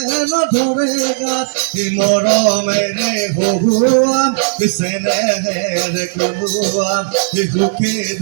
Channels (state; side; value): silent; left; digital silence